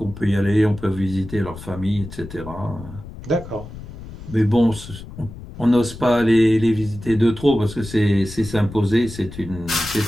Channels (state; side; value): noise; left; rumble, 13 dB below the sound